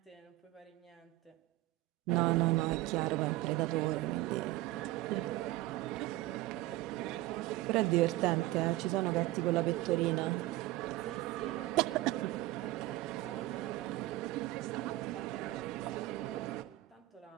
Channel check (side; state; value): left; quieter; 17.5 dB